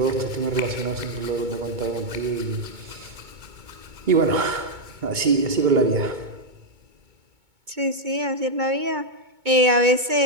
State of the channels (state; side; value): late; left; 2.2 ms